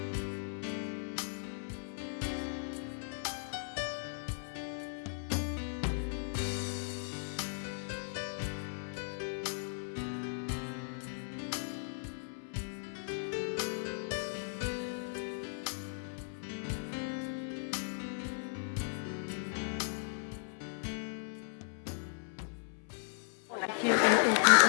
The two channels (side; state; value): right; silent; 53 dB below the other